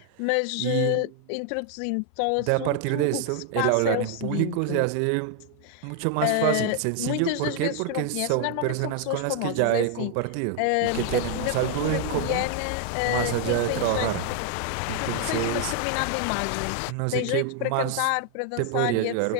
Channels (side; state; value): both; different; correlation 0.00